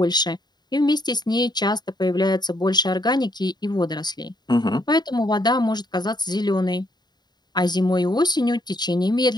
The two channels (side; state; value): right; late; 0.20 ms